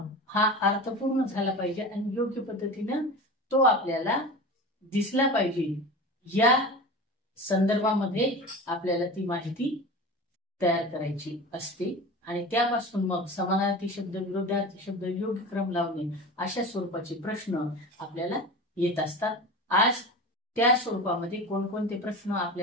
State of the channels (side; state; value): both; normal; correlation 0.31